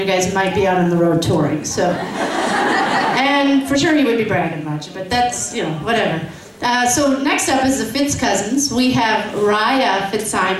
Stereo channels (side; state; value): both; identical; correlation 1.00